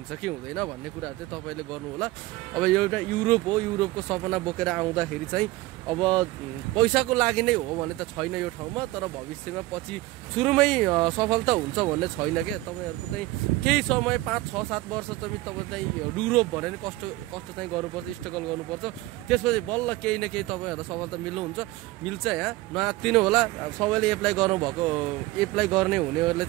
कि हुँदैन भन्ने कुराहरू चाहिँ तपाईँले गर्नु होला। अब एउटा युरोप हो, युरोपको सपना बोकेर आउँदाखेरि चाहिँ अब पैसाको लागि नै हो भने त छैन यो ठाउँमा, तर भविष्यमा पछि सुरुमै सफलता हुन्छ भन्ने छैन क्या। तपाईँहरूको चाहिँ केही समय 5-6-7 वर्ष तपाईँ चाहिँ युरोप भने नि कष्ट चाहिँ गर्नुपर्छ, स्ट्रगल गर्नुपर्छ। त्यसपछि बल्ल केही न केही तपाईँहरूलाई सफलता मिल्छ। यहाँ नआत्तिनु होला। सबैले एप्लाई गर्नुभएको, एप्लाई गर्ने हुनेहरूले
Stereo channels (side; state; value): left; quieter; 18.7 dB